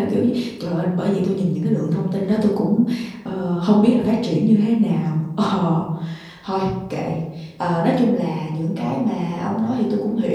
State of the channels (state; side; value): identical; both; correlation 1.00